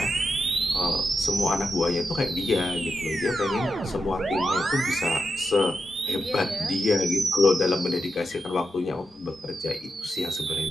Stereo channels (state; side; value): normal; both; correlation 0.87